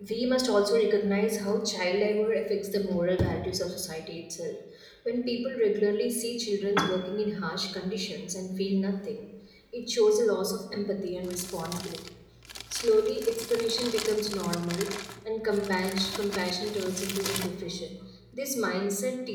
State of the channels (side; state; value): both; identical; correlation 1.00